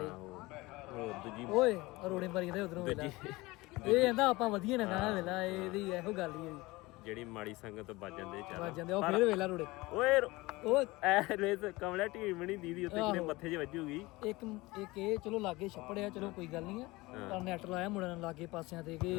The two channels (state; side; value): quieter; right; 21.4 dB